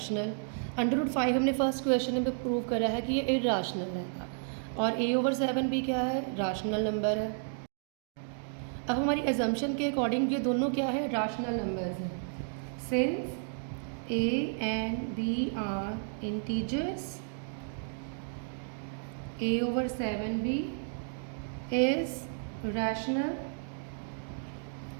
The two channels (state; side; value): silent; left; digital silence